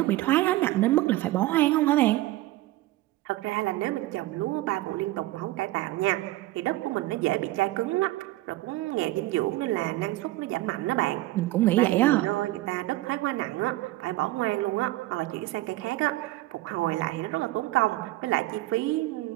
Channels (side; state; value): left; quieter; 17.6 dB